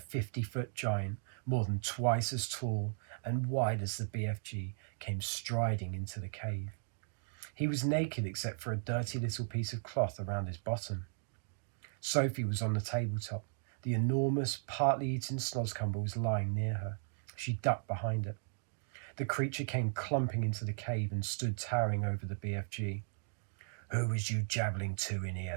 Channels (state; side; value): silent; left; digital silence